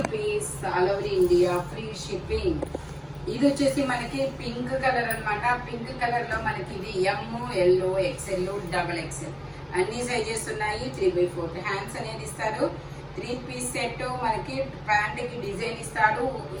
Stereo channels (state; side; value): identical; both; correlation 1.00